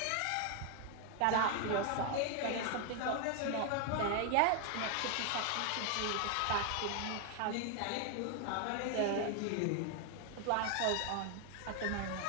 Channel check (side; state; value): both; different; correlation 0.00